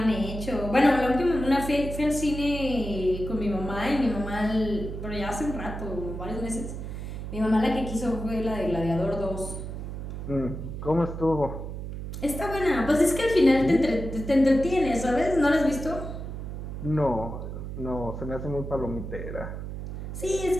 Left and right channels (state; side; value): noise; right; hum, 7 dB below the sound